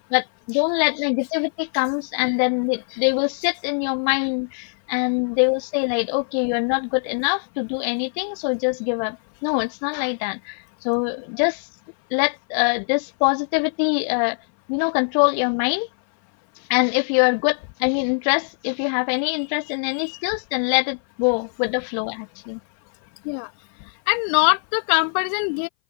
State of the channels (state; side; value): silent; right; 59 dB below the other